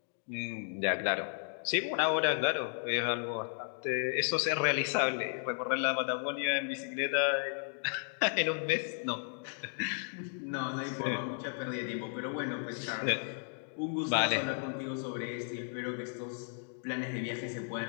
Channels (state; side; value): silent; right; 55 dB below the other